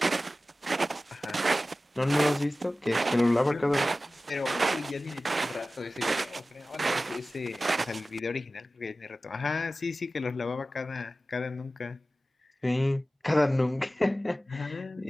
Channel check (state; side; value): normal; both; correlation 0.96